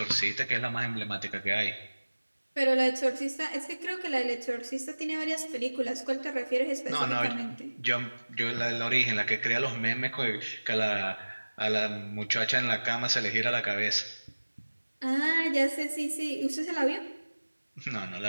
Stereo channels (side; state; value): both; inverted; correlation -1.00